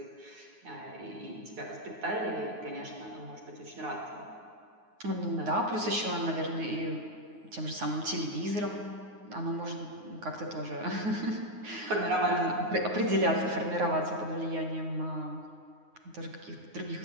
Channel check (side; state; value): left; late; 9.5 ms